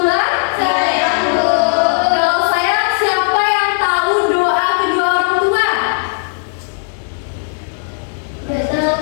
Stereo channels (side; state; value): right; silent; digital silence